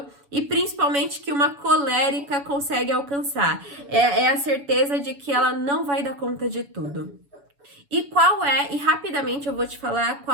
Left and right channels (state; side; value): late; left; 7.0 ms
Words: e principalmente que uma colérica, consegue alcançar. É a certeza de que ela não vai dar conta de tudo. E rapidamente eu vou te falar